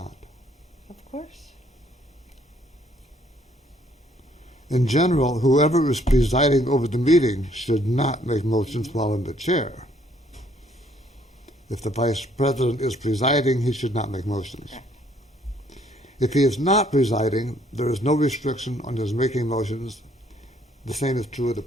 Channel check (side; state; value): both; normal; correlation 0.64